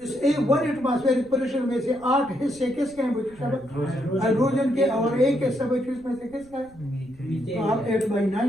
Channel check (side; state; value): right; noise; rumble, 25 dB below the sound